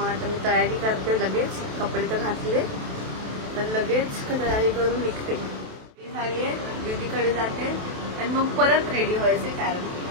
आता मी तयारी करते, लगेच कपडे तर घातले तर लगेच तयारी करून निघते. झाली आहे, दीदीकडे जाते आणि मग परत रेडी व्हायचे, कारण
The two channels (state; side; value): late; left; 27 ms